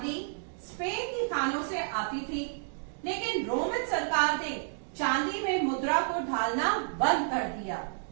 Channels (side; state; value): left; silent; digital silence